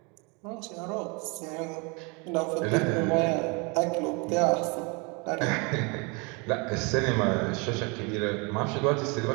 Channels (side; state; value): left; quieter; 30.6 dB